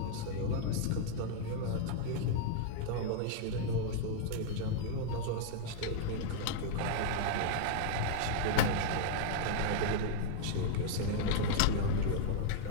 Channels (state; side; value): different; both; correlation -0.01